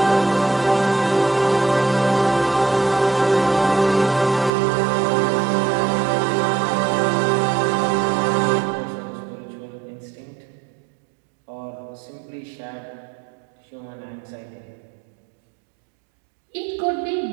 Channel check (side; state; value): left; drops out; at 4.5 s